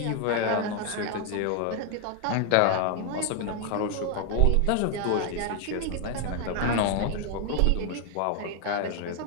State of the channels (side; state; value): both; different; correlation 0.01